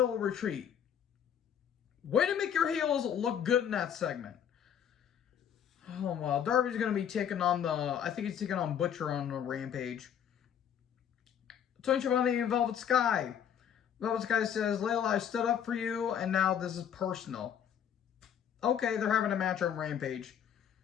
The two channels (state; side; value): quieter; right; 8.9 dB